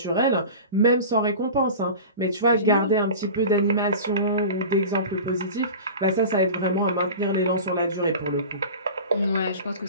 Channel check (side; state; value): both; inverted; correlation -0.34